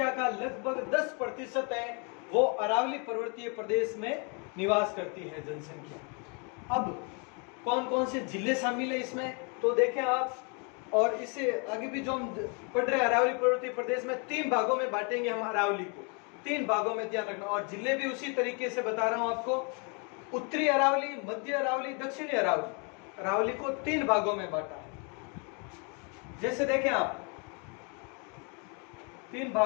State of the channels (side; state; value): right; quieter; 35.4 dB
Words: का लगभग 10% है वो अरावली पर्वतीय प्रदेश में निवास करती है जनसंख्या। अब कौन कौन से जिले शामिल है इसमें, तो देखें आप। और इससे आगे भी जो हम पढ़ रहे हैं अरावली पर्वतीय प्रदेश में 3 भागों में बांटेंगे हम अरावली को, 3 भागों में, ध्यान रखना। और जिले भी उसी तरीके से बता रहा हूं आपको, उत्तरी अरावली, मध्य अरावली, दक्षिणी अरावली। अरावली को 3 भागों में बांटा है। जैसे देखें आप, 3